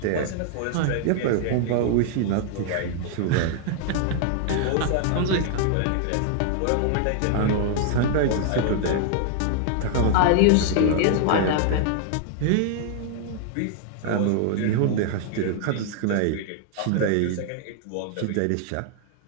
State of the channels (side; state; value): both; different; correlation 0.00